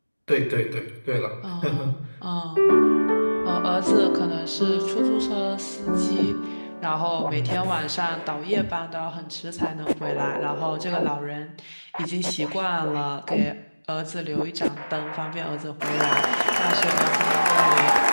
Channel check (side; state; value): both; inverted; correlation -1.00